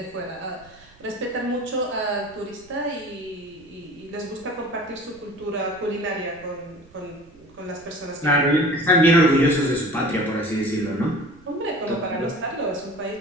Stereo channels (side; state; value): right; noise; rumble, 26 dB below the sound